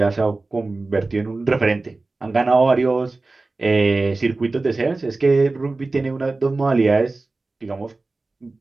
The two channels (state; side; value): quieter; left; 3.4 dB